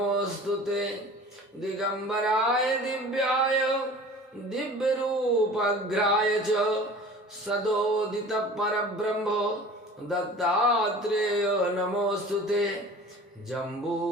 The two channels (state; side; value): normal; both; correlation 0.42